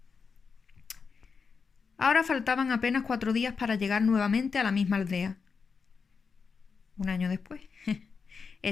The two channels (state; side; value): quieter; right; 5.4 dB